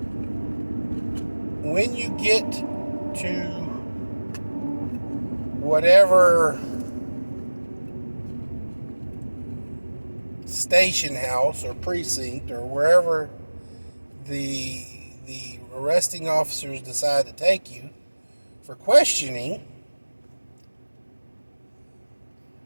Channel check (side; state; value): both; inverted; correlation -1.00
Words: when you get to whatever station house or precinct or wherever the the arresting officers decide to take you for questioning,